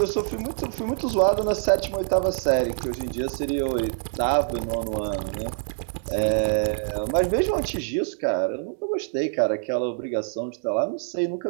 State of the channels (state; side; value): silent; left; 62 dB below the other